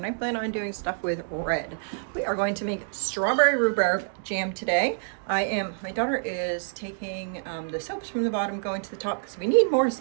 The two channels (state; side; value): silent; left; digital silence